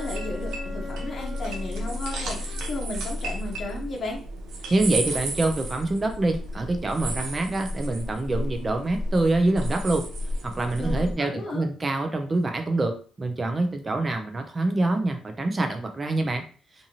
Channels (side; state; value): both; normal; correlation 0.91